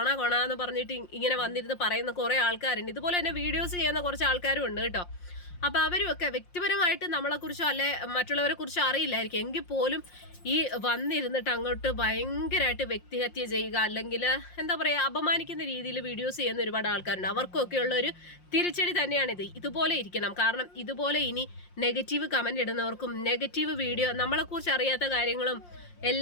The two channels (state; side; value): late; right; 5.6 ms